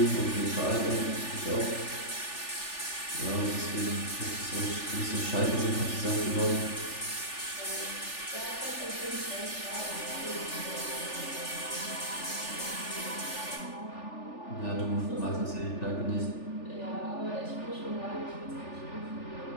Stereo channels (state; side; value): late; right; 3.4 ms